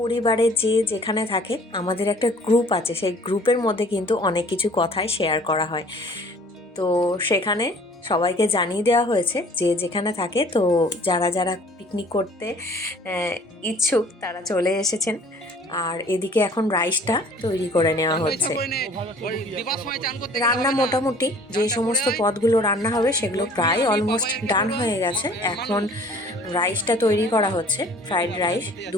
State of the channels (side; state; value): both; normal; correlation 0.52